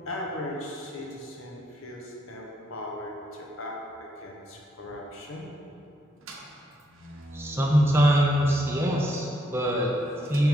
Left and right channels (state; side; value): normal; both; correlation 0.76